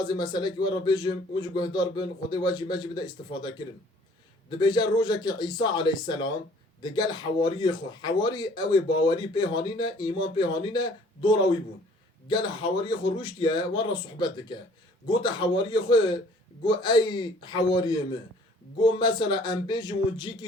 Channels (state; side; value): normal; both; correlation 0.55